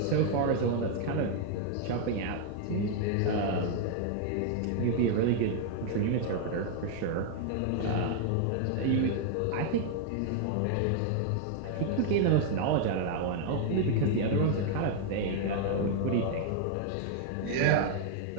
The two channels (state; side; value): different; both; correlation 0.00